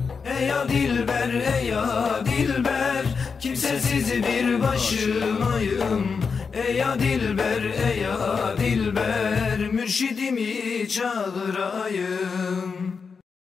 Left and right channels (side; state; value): right; quieter; 5.4 dB